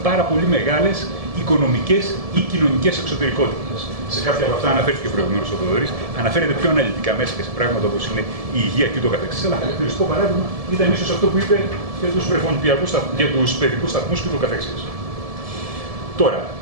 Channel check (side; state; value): left; late; 1.7 ms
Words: πάρα πολύ μεγάλες οικονομικές ή κοινωνικές εξωτερικότητες. Σε κάποια από αυτά αναφέρθηκε προηγουμένως ο Θοδωρής, αναφέρεται πιο αναλυτικά μέσα και σε πράγματα όπως είναι η υγεία και το καθεξής. Αλλά χαρακτηριστικό παράδειγμα ήταν ίσως αυτό που είπε για τους βρεφονιπιακούς, για τους παιδικούς σταθμούς και το καθεξής. Τώρα,